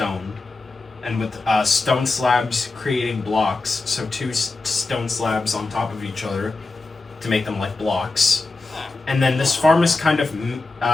And with stone slabs creating blocks, so two stone slabs on top of each other to make them like blocks. And then this farm is kind of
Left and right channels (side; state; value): right; quieter; 3.5 dB